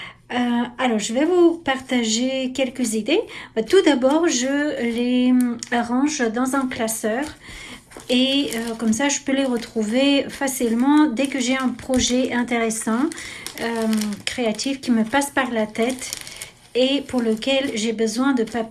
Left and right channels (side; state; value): both; identical; correlation 1.00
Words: Alors je vais vous partager quelques idées. Tout d'abord, je les arrange dans un classeur. Et comme ça, je peux les retrouver facilement dès que j'ai un projet intéressant, créatif qui me passe par la tête et pour lequel j'ai besoin de